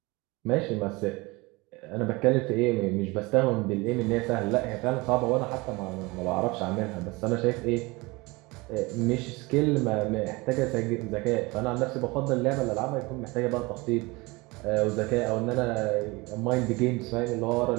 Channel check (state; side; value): quieter; left; 24.1 dB